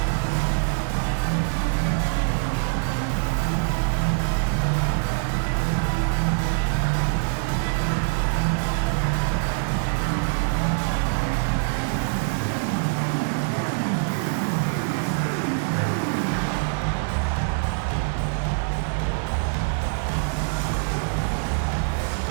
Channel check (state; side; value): silent; left; digital silence